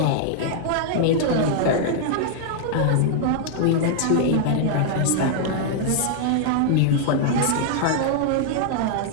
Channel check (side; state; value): both; different; correlation -0.01